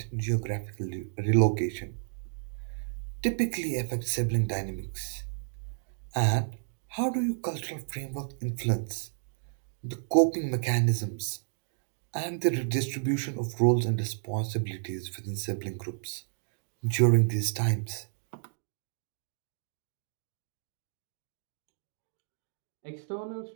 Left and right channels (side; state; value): left; silent; digital silence